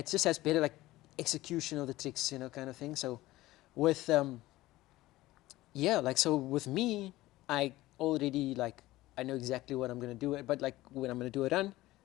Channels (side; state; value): right; quieter; 17.4 dB